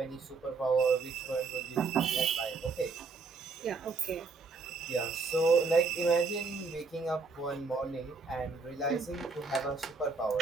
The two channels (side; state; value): left; quieter; 4.3 dB